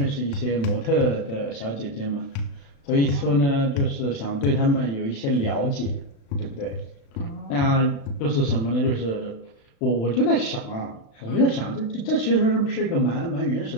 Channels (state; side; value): late; right; 36 ms